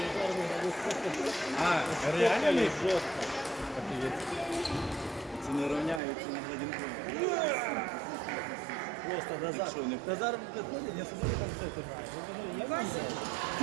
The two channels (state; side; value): drops out; left; at 6.0 s